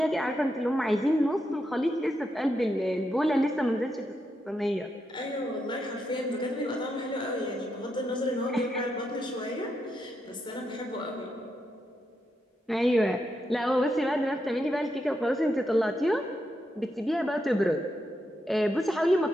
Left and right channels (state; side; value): normal; both; correlation 0.83